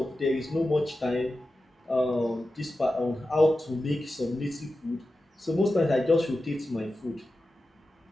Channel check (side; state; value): both; normal; correlation 0.93